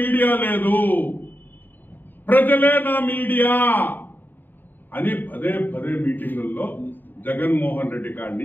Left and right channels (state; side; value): late; right; 0.091 ms